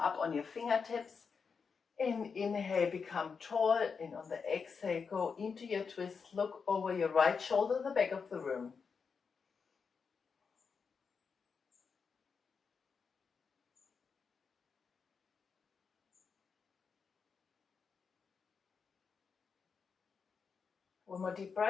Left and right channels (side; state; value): right; quieter; 5.6 dB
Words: on your fingertips. And inhale, become tall. And on the exhale, go into your twist. Look over your right shoulder, the back of the room. One more deep